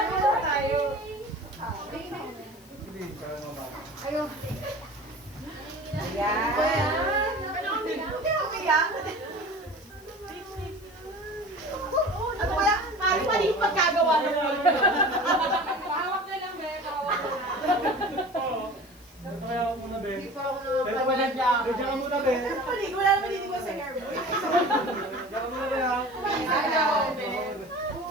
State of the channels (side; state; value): left; noise; hiss, 25 dB below the sound